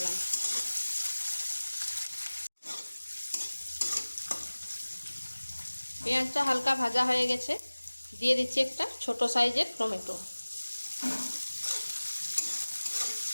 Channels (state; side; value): inverted; both; correlation -1.00